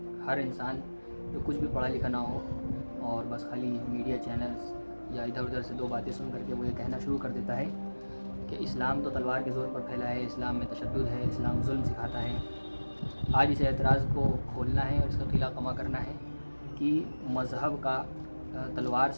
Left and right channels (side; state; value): both; inverted; correlation -1.00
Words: ہر انسان جو کچھ بھی پڑھا لکھا نہ ہو اور بس خالی میڈیا چینلز یا ادھر ادھر سے دو باتیں سن کر کے وہ یہ کہنا شروع کر دیتا ہے کہ اسلام تو تلوار کے زور پر پھیلا ہے، اسلام میں تشدد ہے، اسلام ظلم سکھاتا ہے۔ آج اس اعتراض کو کھولنا ہے اور اس کا قلعہ کما کرنا ہے کہ مذہب کا تلوار